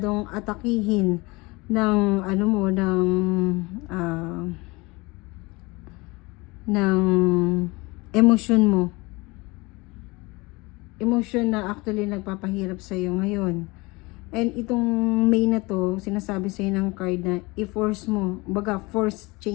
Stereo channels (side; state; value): right; quieter; 24.3 dB